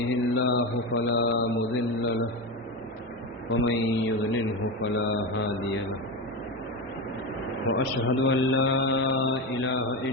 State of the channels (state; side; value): normal; both; correlation 0.18